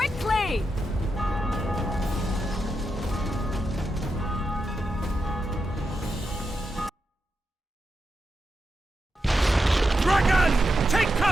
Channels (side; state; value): both; normal; correlation 0.87